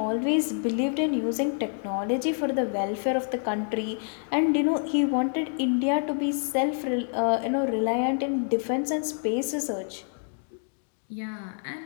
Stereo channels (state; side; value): silent; right; 60 dB below the other